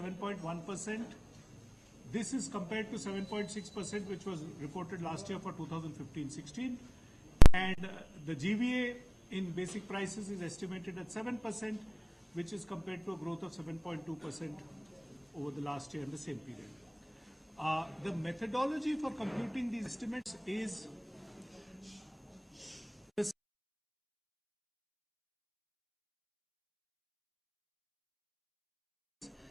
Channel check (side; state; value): both; identical; correlation 1.00